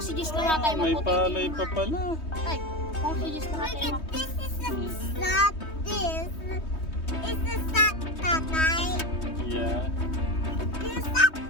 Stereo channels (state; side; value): late; right; 3.2 ms